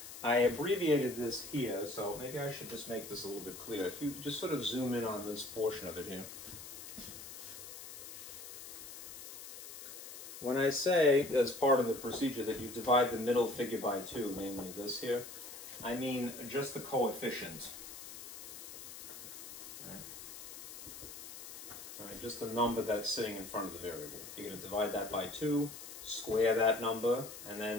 I abbreviated this here, so maybe I should just make this a little bit clearer. If you just sort of zoom in on this portion of it here. When I say, as part of the procedure, that you divide the middle figure by 2, namely this here, I mean just the coefficient. Right, just the number that's sitting in front of the variable. You're going to divide that by 2, square that number, and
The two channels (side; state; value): left; noise; hiss, 12 dB below the sound